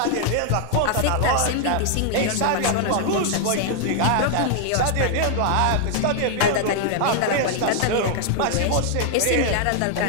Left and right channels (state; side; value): different; both; correlation 0.00